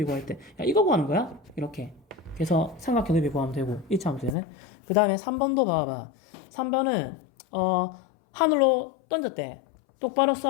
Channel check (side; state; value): right; drops out; at 4.4 s